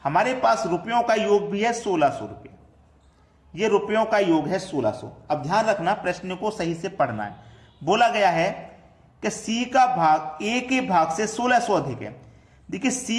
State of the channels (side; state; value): both; identical; correlation 1.00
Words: हमारे पास रुपयों का योग भी है 1600 रुपये, ये रुपयों का योग है 1600। अब ध्यान रखना, प्रश्न को सही से पढ़ना है। बोला गया है कि सी का भाग ए के भाग से 1600 अधिक है। देखिए